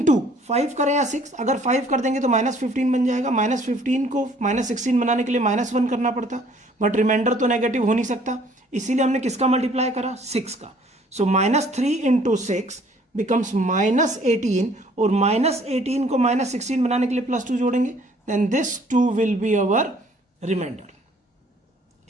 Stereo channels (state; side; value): normal; both; correlation 0.58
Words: 5 करें या 6, अगर 5 कर देंगे तो -15 बन जाएगा। -15 को -16 बनाने के लिए -1 करना पड़ता, बट रिमाइंडर तो नेगेटिव हो नहीं सकता, इसीलिए हमने किसका मल्टीप्लाई करा? 6 का। सो -3 इंटू 6 बिकम्स -18, और -18 को -16 बनाने के लिए +2 जोड़ेंगे, then this 2 will be our remainder.